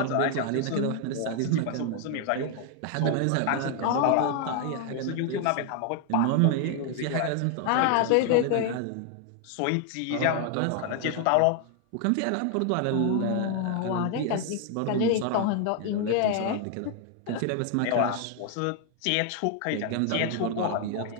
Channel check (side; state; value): both; different; correlation 0.00